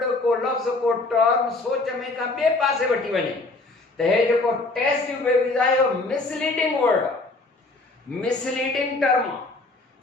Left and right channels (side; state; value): right; quieter; 3.2 dB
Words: को लफ़्ज़ को टर्म सोच में का ॿिए पासे वठी वञे। त हे जेको टेस्ट ट्यूब बेबीज़ आहे इहो मिसलीडिंग वर्ड आहे मिसलीडिंग टर्म आहे।